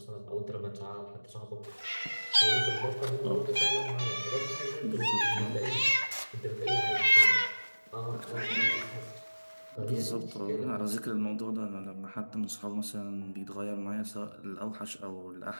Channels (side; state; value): both; inverted; correlation -1.00